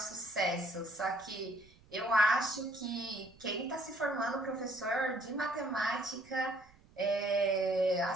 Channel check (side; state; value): right; noise; rumble, 27 dB below the sound